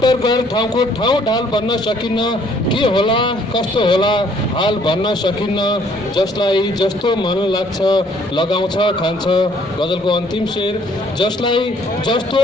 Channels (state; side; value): normal; both; correlation 0.62